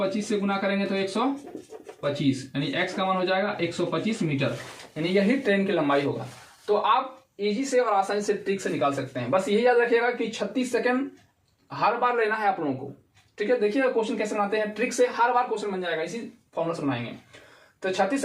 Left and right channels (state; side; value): identical; both; correlation 1.00